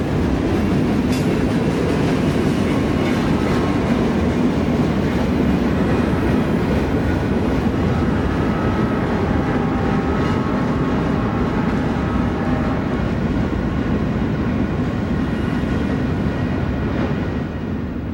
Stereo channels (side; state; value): both; identical; correlation 1.00